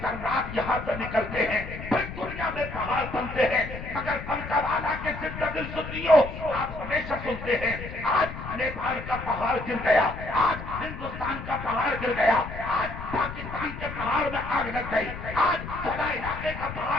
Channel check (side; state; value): left; noise; rumble, 9 dB below the sound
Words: ذرات یہاں سے نکلتے ہیں، پھر دنیا میں پہاڑ بنتے ہیں۔ مگر بنکا والا کے زندہ دل سنیوں، آپ ہمیشہ سنتے ہیں آج نیپال کا پہاڑ گر گیا، آج ہندوستان کا پہاڑ گر گیا، آج پاکستان کے پہاڑ میں آگ لگ گئی، آج فلاں علاقے کا